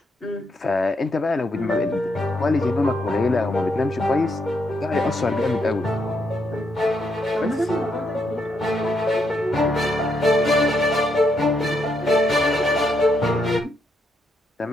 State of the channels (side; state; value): both; normal; correlation 0.78